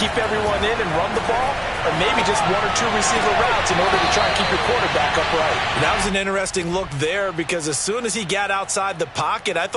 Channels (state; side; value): identical; both; correlation 1.00